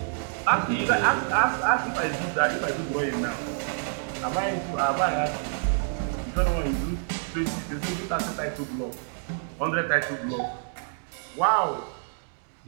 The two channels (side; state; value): left; silent; digital silence